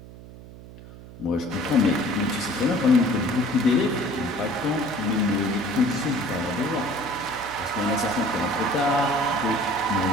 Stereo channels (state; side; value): noise; right; hum, 17 dB below the sound